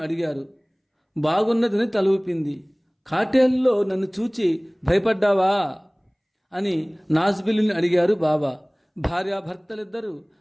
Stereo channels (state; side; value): identical; both; correlation 1.00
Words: అడిగారు. బాగున్నదని తల ఊపింది. కాటేల్లో నన్ను చూచి భయపడ్డావా అని నాజ్బిల్లిని అడిగారు బాబా. భార్యాభర్తలిద్దరూ